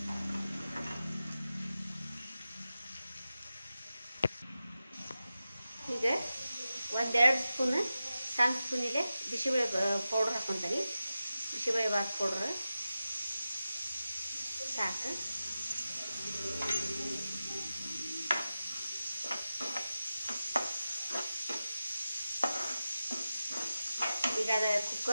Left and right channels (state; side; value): inverted; both; correlation -0.93